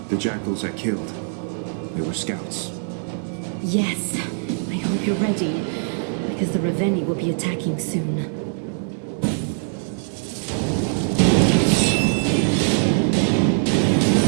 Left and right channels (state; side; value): silent; left; 64 dB below the other